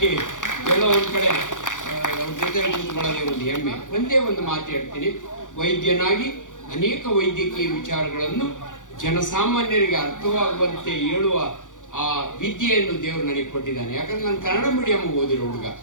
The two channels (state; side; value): late; right; 0.87 ms